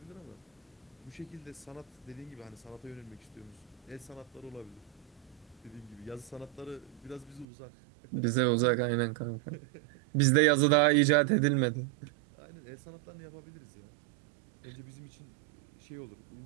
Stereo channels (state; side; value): drops out; left; at 7.5 s